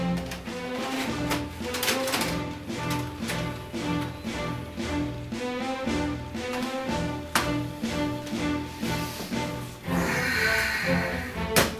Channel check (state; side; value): identical; both; correlation 1.00